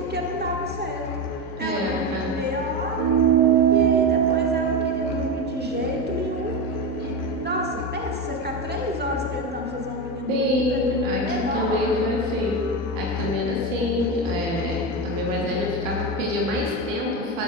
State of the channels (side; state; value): both; normal; correlation 0.17